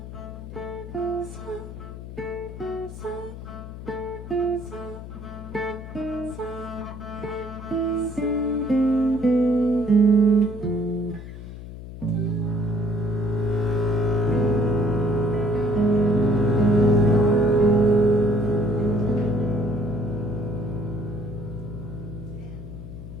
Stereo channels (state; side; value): noise; left; hum, 12 dB below the sound